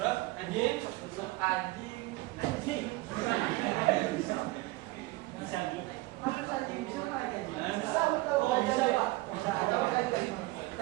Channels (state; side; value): quieter; left; 20.8 dB